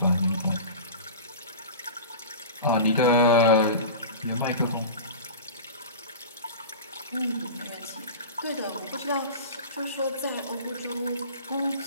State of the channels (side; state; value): both; inverted; correlation -0.33